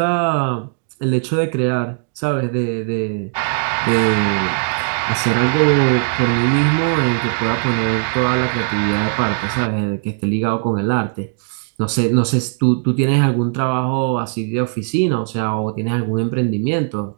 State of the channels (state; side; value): silent; left; 59 dB below the other